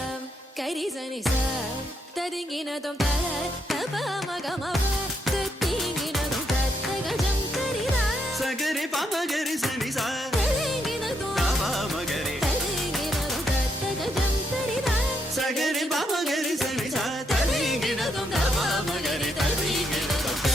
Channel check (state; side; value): normal; both; correlation 0.77